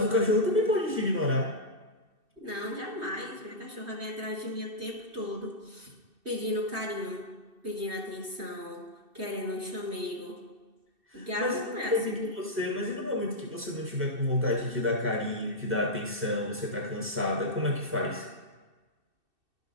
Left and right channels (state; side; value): late; left; 2.7 ms